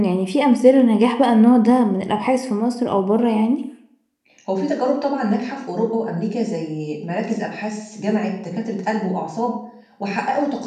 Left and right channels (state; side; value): identical; both; correlation 1.00